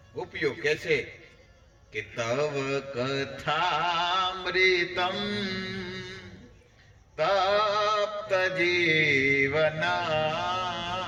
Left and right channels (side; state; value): both; identical; correlation 1.00